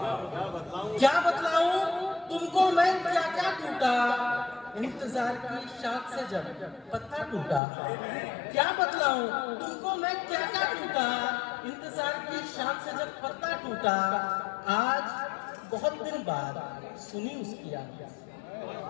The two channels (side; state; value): right; drops out; at 7.6 s